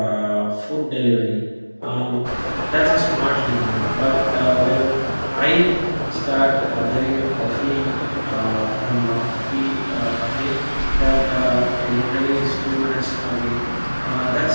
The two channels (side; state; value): both; inverted; correlation -1.00